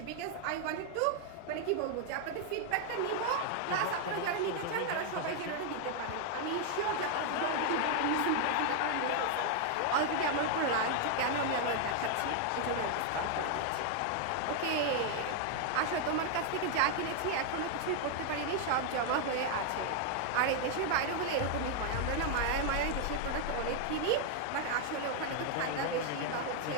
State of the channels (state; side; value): different; both; correlation 0.00